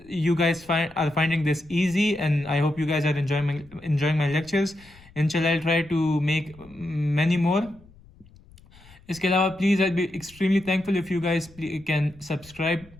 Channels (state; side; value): noise; left; rumble, 25 dB below the sound